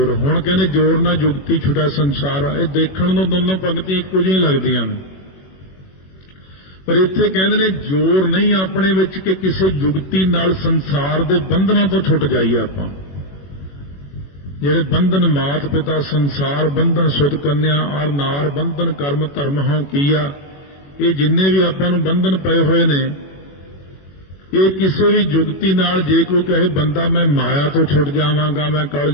हुण कहने जोर ना जुगती छुटा संसार। ये देखण नूं दोनों पंक्तियां इक्को जिही लगदियां ने, पर इत्थे कहंदे ने जोर नहीं अपने विच कि किसी जुगती नाल संसार दे बंधनां तो छुट जाइए। आपां ਜਿਹੜੇ ਬੰਧਨ ਮਾਤ ਪਿਤਾ ਸੰਸਾਰ ਬੰਧਨ ਸੁਧ ਕੰਨਿਆ ਔਰ ਨਾਰ ਬੰਧਨ ਕਰਮ ਧਰਮ ਹਉ ਕੀਆ, ਇਹ ਜਿੰਨੇ ਵੀ ਆਪਾਂ ਨੂੰ ਬੰਧਨ ਪਏ ਹੋਏ ਨੇ, ਇਹ ਕਿਸੇ ਵੀ ਜੁਗਤੀ ਨਾਲ ਜੇ ਕੋਈ ਕਹੇ ਬੰਦਾ ਮੈਂ ਮਾਇਆ ਤੋਂ ਛੁੱਟ ਜਾਵਾਂਗਾ, ਮੈਂ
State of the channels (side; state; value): right; late; 21 ms